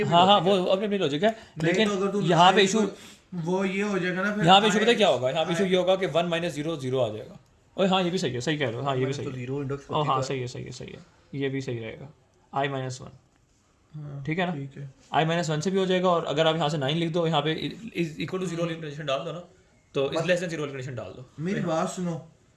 हाँ हाँ वो अपनी अपनी लॉजिक है, नहीं लेकिन तो अगर तू यहाँ पे 9th इशू, वो ये हो जाएगा ना फिर यहाँ पे इशू पता है क्या होगा? यहाँ पे इशू ये होगा कि 1 - 0 0 आ जाएगा। ओए हाँ ये भी सही है, सही कह रहे हो, हाँ ये भी सही है। 0 इंडेक्स ओ हाँ सही है, ये भी सही रहेगा। I -1, हाँ, ठीक है ना? ठीक है। I -1 से भी हो जाएगा, और अगर आप यहाँ से 9 लिख दो, यहाँ पे इज इक्वल टू 0 वाली कंडीशन डाल दो ना, तो इज लेस देन 0 वाली कंडीशन डाल दो। मेरी बात सुनो,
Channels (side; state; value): both; identical; correlation 1.00